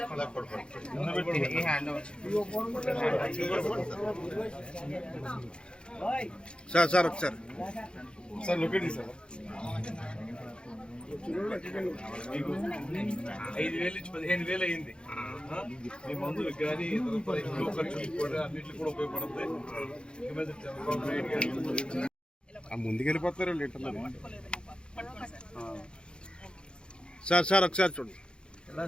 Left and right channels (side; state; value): right; late; 0.052 ms